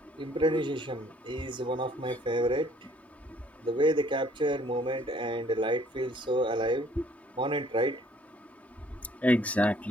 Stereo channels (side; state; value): both; normal; correlation 0.60